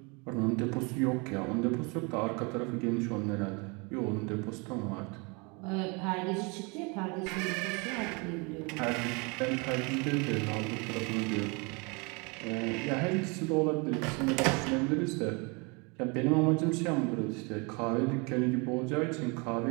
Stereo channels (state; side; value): quieter; left; 30.2 dB